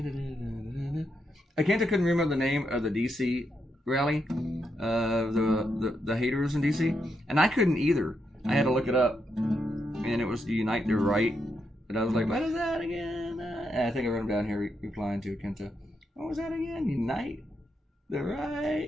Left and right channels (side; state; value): both; normal; correlation 0.82